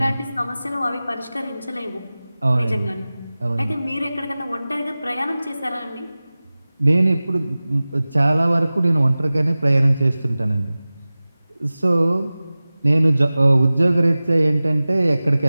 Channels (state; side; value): inverted; both; correlation -0.98